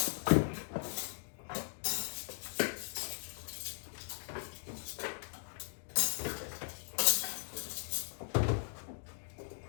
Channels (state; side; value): silent; right; digital silence